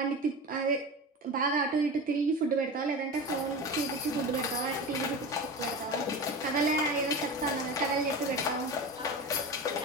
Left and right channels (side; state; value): both; normal; correlation 0.28